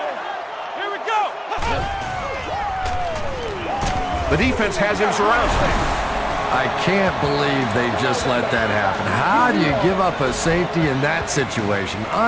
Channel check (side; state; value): both; identical; correlation 1.00